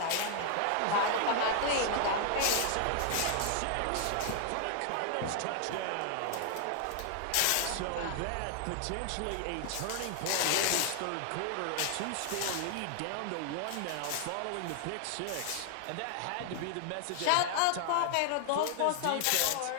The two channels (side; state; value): both; different; correlation 0.00